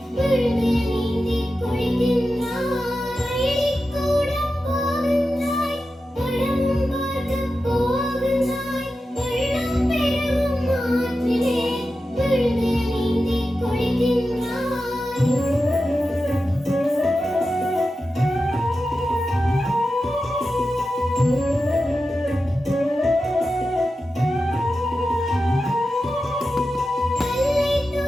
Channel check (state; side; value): normal; both; correlation 0.91